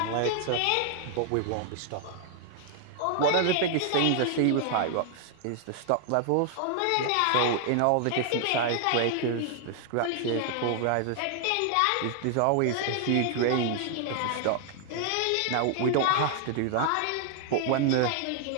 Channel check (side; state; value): both; different; correlation 0.00